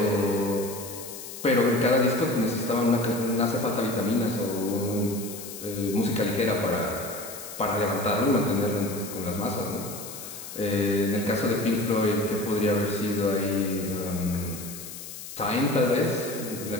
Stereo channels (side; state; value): left; noise; hiss, 11 dB below the sound